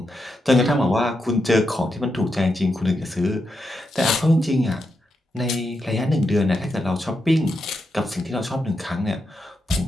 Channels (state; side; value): normal; both; correlation 0.85